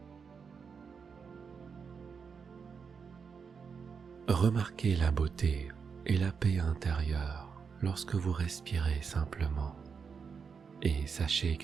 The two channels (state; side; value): quieter; left; 5.9 dB